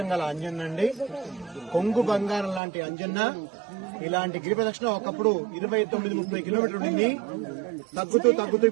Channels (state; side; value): drops out; left; at 2.6 s